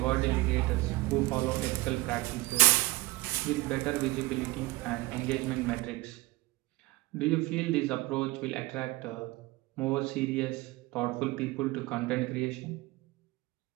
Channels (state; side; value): quieter; left; 21.0 dB